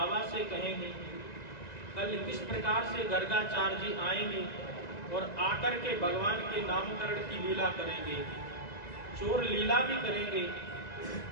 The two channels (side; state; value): right; late; 1.9 ms